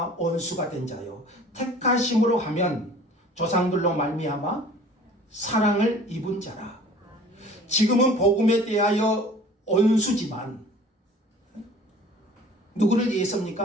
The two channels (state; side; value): normal; both; correlation 0.48